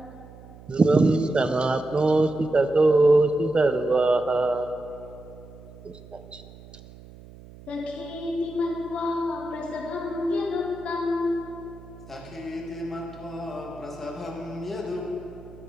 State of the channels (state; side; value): noise; right; hum, 19 dB below the sound